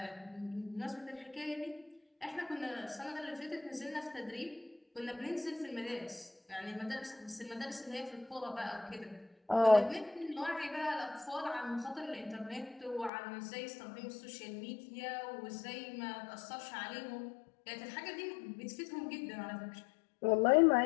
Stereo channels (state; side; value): drops out; right; at 13.1 s